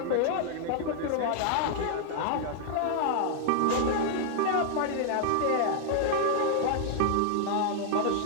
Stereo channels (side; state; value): both; different; correlation 0.00